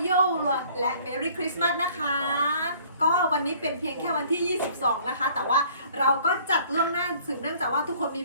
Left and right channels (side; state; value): both; inverted; correlation -0.55